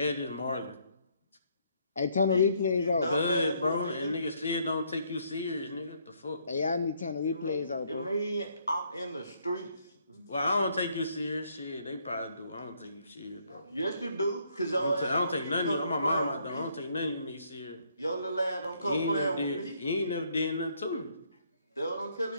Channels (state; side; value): inverted; both; correlation -0.69